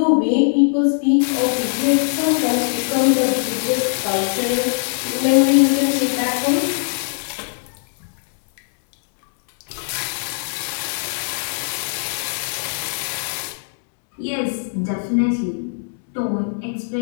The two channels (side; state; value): right; silent; digital silence